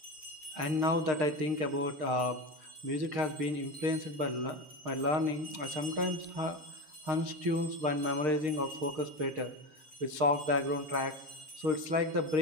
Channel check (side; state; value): left; late; 6.5 ms